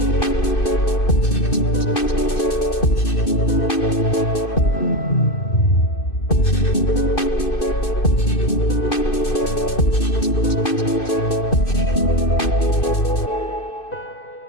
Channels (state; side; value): late; right; 2.6 ms